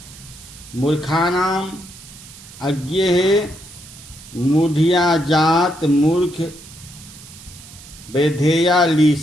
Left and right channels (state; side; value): noise; right; hiss, 19 dB below the sound